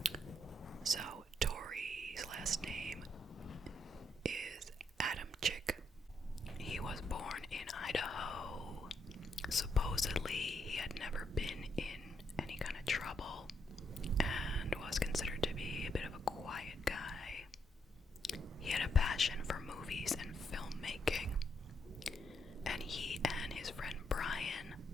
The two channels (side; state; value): both; normal; correlation 0.77